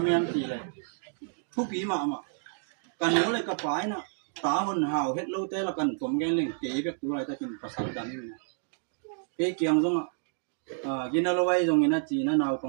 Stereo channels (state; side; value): silent; left; digital silence